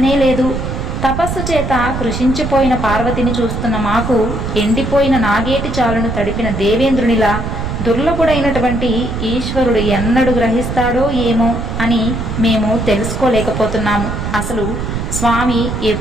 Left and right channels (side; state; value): right; noise; rumble, 4 dB below the sound